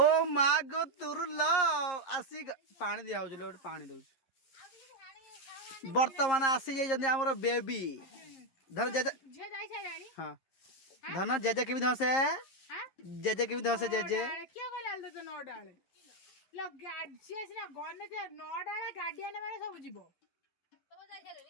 मागो तुर लो आसी पानी दिया हो पानी दो बर्तमान आसी जाइए आमर बेबी धन जेजे हाँ धन जेजे केमी धसे जेजे केमी धसे जेजे क्या कहला तो नौ डाले लो गाडी ना गने जे नौ डाले गाडी आने माने सब जीवो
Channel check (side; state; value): right; late; 11 ms